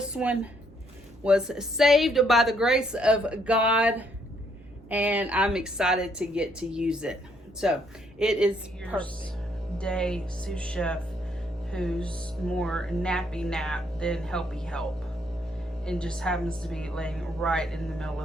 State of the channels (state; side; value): normal; both; correlation 0.70